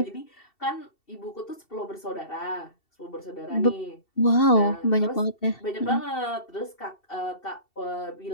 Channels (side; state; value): right; late; 2.7 ms